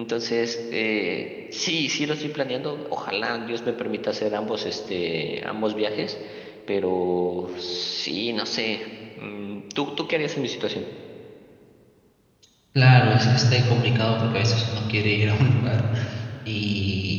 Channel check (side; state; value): both; identical; correlation 1.00